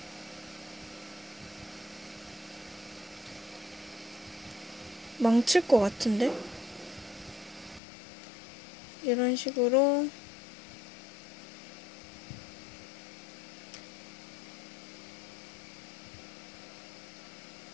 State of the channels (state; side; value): drops out; right; at 7.8 s